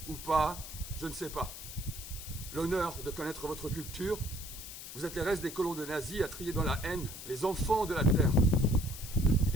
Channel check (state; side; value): noise; left; hiss, 11 dB below the sound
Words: ou pas, je ne sais pas, l'honneur de connaître votre culture. Vous êtes les restes des colons de nazis à trier dans la haine les enfants de la terre.